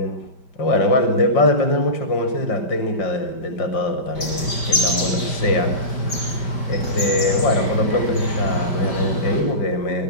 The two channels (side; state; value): right; late; 5.1 ms